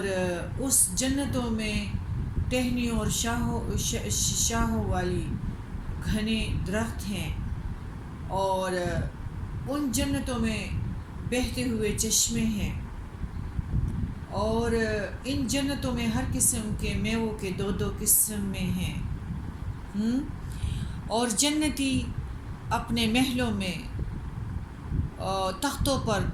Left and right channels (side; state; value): both; identical; correlation 1.00